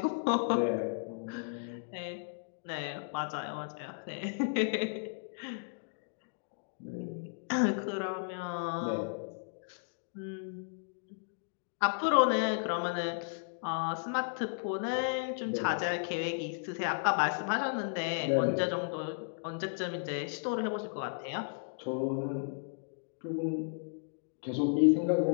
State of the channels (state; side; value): silent; right; digital silence